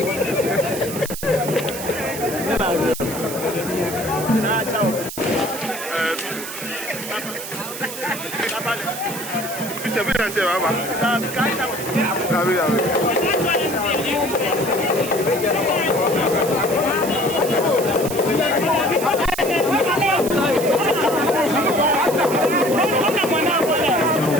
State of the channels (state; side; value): noise; right; hiss, 9 dB below the sound